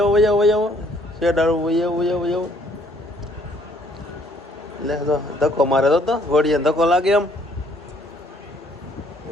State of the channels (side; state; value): both; normal; correlation 0.63